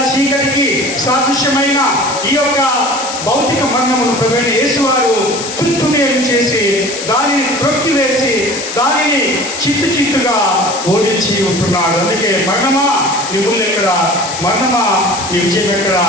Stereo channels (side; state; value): left; noise; hiss, 8 dB below the sound